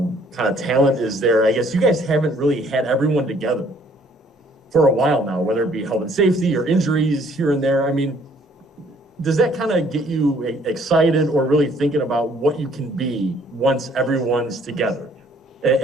of talent is there. I guess you guys haven't really had everyone together for a while now, whether it be health and safety or injuries here and there. I mean, does that kind of get you excited or really thinking about what you can be once everyone's together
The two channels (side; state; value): both; normal; correlation 0.61